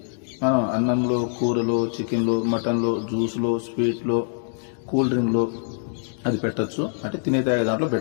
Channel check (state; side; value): silent; right; digital silence